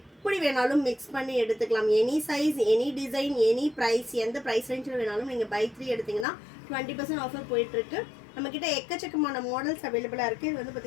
வேணாலும் மிக்ஸ் பண்ணி எடுத்துக்கலாம். Any size, any design, any price, எந்த ப்ரைஸ் ரேஞ்சில் வேணாலும் நீங்கள் பை 3 எடுத்திங்கன்னா 20% ஆஃபர் போயிட்டுருக்கு. நம்மக்கிட்ட எக்கச்சக்கமான மாடல்ஸ் அவைலபிளாக இருக்குது. இது வந்து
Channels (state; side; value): drops out; right; at 6.2 s